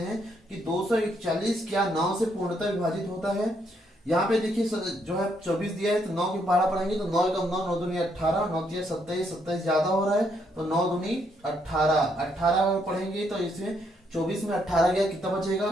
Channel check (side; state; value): both; normal; correlation 0.74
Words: कि 241 क्या 9 से पूर्णतः विभाजित होता है। यहाँ पे देखिए जो है 24 दिया है, तो 9 के पहाड़ा पढ़ेंगे तो 9 एकम 9, 9 दूनी 18, 9 तिया 27, 27 ज्यादा हो रहा है तो 9 दूनी 18, 18 पढ़ेंगे तो इसमें 24 में 18 गया, कितना